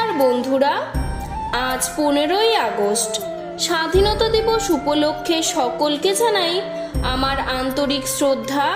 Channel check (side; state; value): both; identical; correlation 1.00